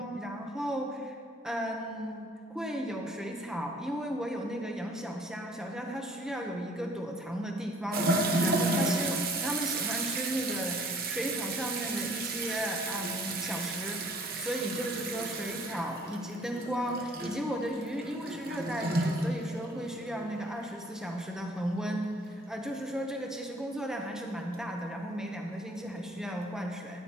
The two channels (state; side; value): normal; both; correlation 0.57